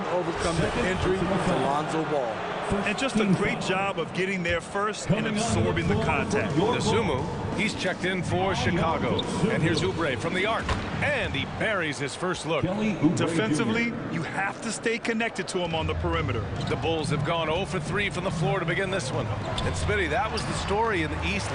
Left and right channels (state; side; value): identical; both; correlation 1.00